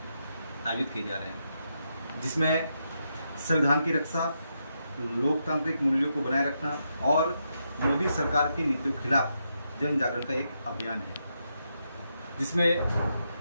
आयोजित किए जा रहे हैं, जिसमें संविधान की रक्षा, लोकतांत्रिक मूल्यों को बनाए रखना और मोदी सरकार की नीतियों के खिलाफ जन जागरण का एक अभियान है, जिसमें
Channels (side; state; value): both; inverted; correlation -0.82